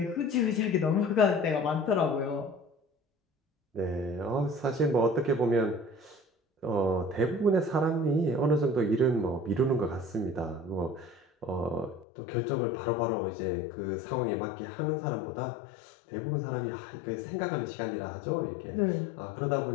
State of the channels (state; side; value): drops out; right; at 12.1 s